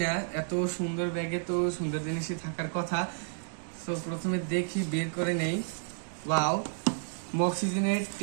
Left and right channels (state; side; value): silent; left; digital silence